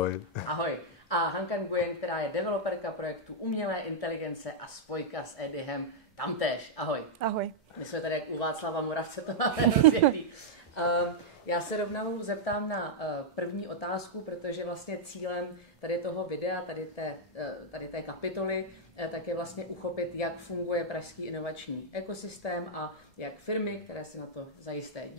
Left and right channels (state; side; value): normal; both; correlation -0.05